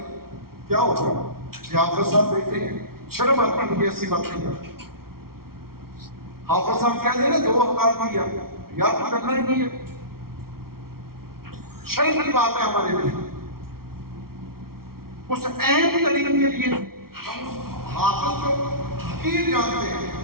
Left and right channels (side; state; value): left; late; 0.94 ms